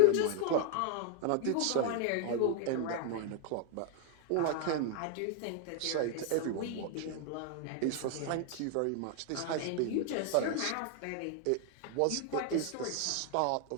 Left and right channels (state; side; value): different; both; correlation 0.00